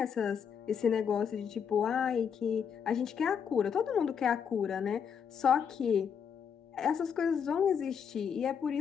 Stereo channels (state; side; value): quieter; right; 7.3 dB